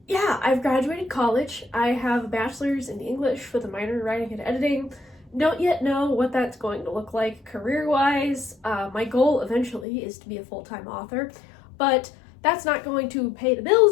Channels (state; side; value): drops out; right; at 9.9 s